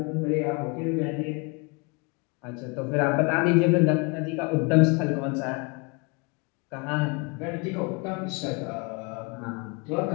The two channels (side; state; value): right; quieter; 30.4 dB